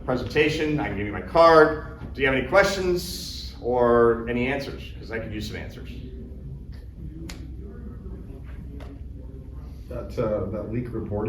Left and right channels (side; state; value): both; identical; correlation 1.00